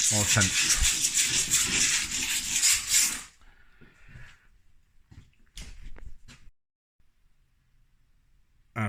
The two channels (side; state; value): both; identical; correlation 1.00